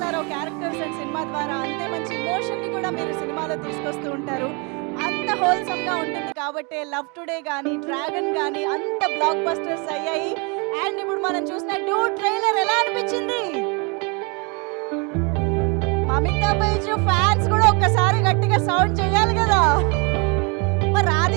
క్యారెక్టర్స్ అండ్ సినిమా ద్వారా అంతే మంచి ఇమోషన్ని కూడా మీరు సినిమాలో తీసుకొస్తూ ఉంటారు. అంత హోల్సమ్గా ఉంటుంది కాబట్టి లవ్ టుడే కానీ డ్రాగన్ కానీ అంత బ్లాక్ బస్టర్స్ అయ్యాయి. అండ్ ఇప్పుడు మనం చూసిన డూడ్ ట్రైలర్ ఎలా అనిపించింది? మమితా బైజు ఫ్యాన్స్ కూడా ఒక్కసారి గట్టిగా సౌండ్ చేయాలి కదా. మరి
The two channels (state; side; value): quieter; left; 32.0 dB